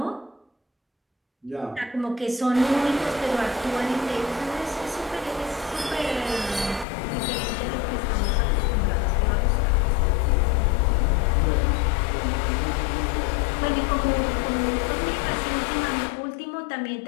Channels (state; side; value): drops out; right; at 6.9 s